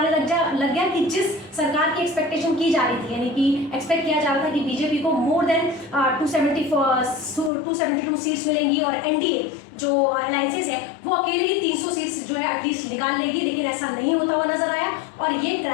लग गया कि जिस सरकार की एक्सपेक्टेशन की जा रही थी, यानी कि एक्सपेक्ट किया जा रहा था कि बीजेपी को मोर देन 272 सीट्स मिलेंगी और एनडीए जो अलायंसेस है वो अकेले ही 300 सीट्स जो है एटलीस्ट निकाल लेगी, लेकिन ऐसा नहीं होता हुआ नजर आया और ये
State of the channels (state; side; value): drops out; right; at 7.5 s